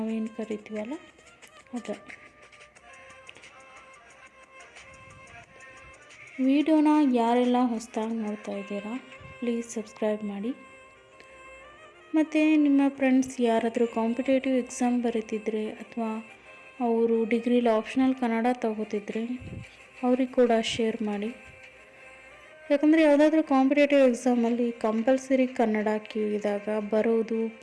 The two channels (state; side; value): identical; both; correlation 1.00